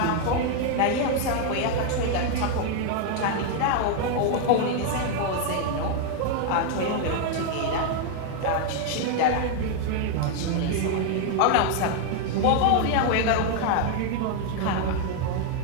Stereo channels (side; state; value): both; different; correlation 0.00